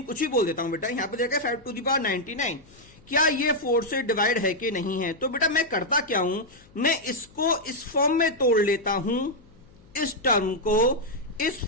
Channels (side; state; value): left; noise; hum, 27 dB below the sound